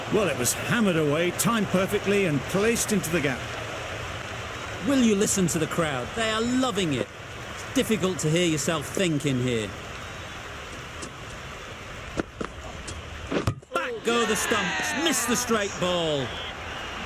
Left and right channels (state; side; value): identical; both; correlation 1.00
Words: Well, it was hammered away, timed perfectly and placed into the gap. Will you listen to the crowd? They are loving it. It's difficult to hear yourself think in here. Back go the stumps, miss the straight ball.